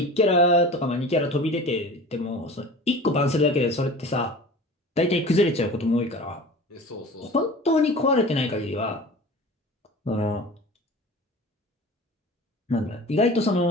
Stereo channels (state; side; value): normal; both; correlation 0.38